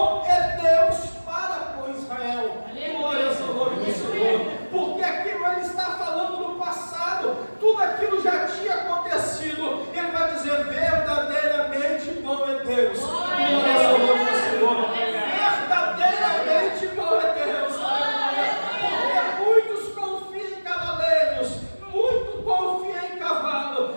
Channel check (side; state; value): both; inverted; correlation -1.00